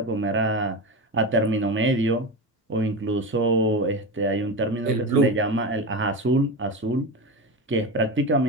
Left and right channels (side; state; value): both; normal; correlation 0.21